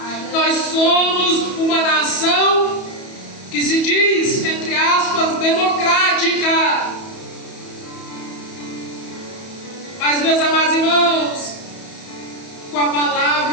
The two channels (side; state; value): right; late; 31 ms